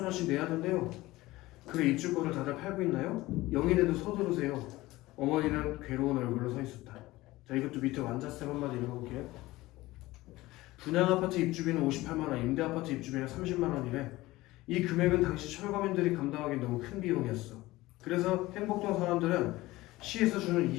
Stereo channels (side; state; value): right; quieter; 18.7 dB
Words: 내야 된대요. 그래 입주권을 다들 팔고 있나요? 영인에도 서두르세요. 어머니는 괴로운 얼굴로 서 있었다. 자 이것도 밑에 완자쌤 한마디 읽어볼게요. 분양 아파트 입주비는 58만 원, 임대 아파트 입주비는 30만 원이래. 이 금액은 당시 철거민들이 감당하기 너무 큰 비용이었어. 그래서 행복동 사람들은 시에서 주는